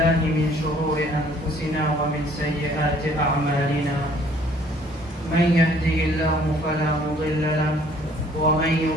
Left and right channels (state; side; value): normal; both; correlation 0.58